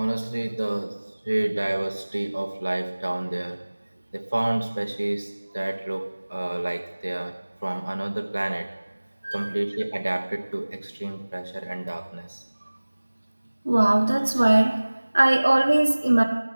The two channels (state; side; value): inverted; both; correlation -1.00